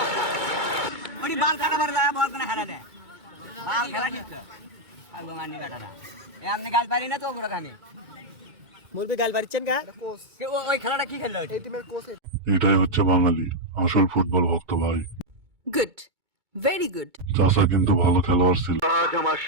এটাই হচ্ছে বাঙালি, আসল ফুটবল ভক্ত ভাই। Good, very good. চাচা কিন্তু ভালো খেলোয়াড় ছিল। আজ আমার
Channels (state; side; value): late; left; 2.2 ms